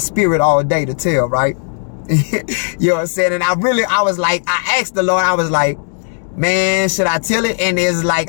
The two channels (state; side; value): silent; right; digital silence